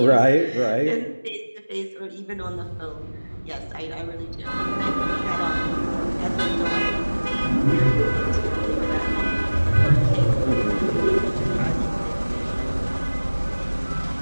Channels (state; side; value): inverted; both; correlation -1.00